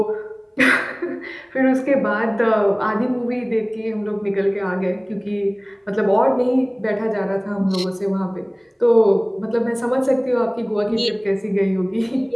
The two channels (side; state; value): both; identical; correlation 1.00